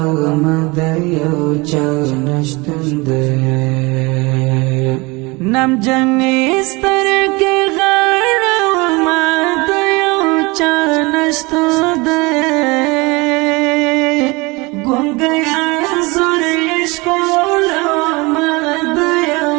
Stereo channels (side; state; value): left; quieter; 25.2 dB